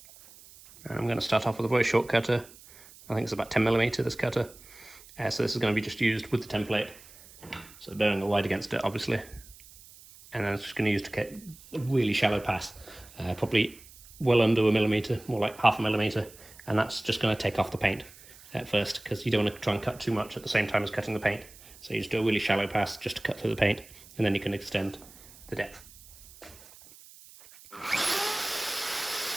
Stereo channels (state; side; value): noise; right; hiss, 21 dB below the sound